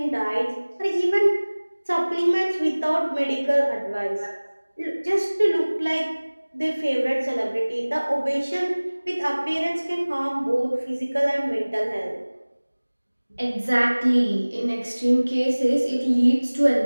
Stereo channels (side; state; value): both; inverted; correlation -1.00